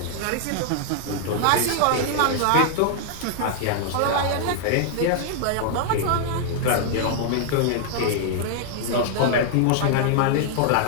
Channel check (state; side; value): different; both; correlation 0.00